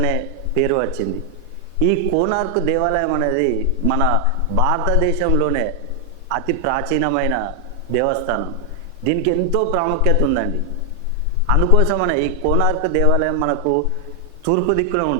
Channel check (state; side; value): different; both; correlation 0.00